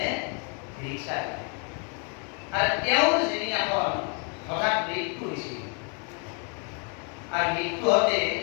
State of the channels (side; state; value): right; quieter; 35.9 dB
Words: ৰিক্সা দিলে। আৰু তেওঁৰ যিদিনাখন হঠাৎ মৃত্যু হৈছিল, আৰু মৃত্যু হওঁতে